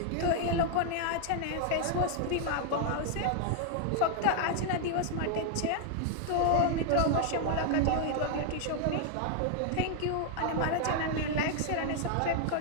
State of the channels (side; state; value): both; different; correlation 0.00